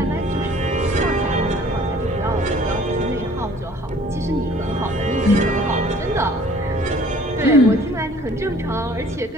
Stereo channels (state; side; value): normal; both; correlation 0.53